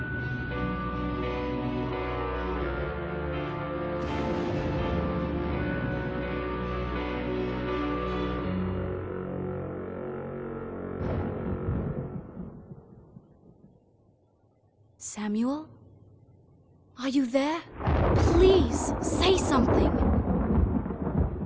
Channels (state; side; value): identical; both; correlation 1.00